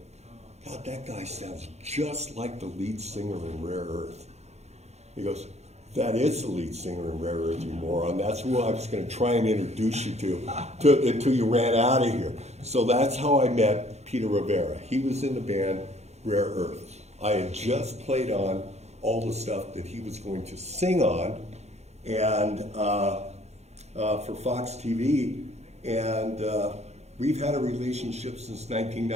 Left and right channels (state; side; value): late; left; 0.32 ms